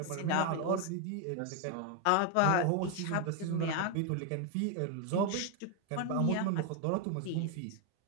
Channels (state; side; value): different; both; correlation 0.01